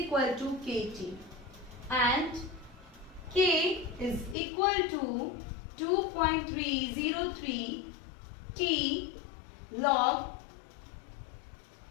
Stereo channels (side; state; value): right; drops out; at 4.4 s